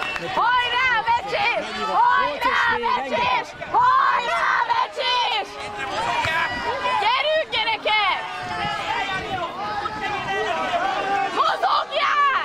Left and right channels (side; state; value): both; identical; correlation 1.00